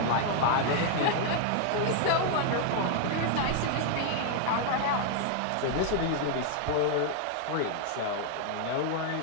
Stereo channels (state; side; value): different; both; correlation 0.00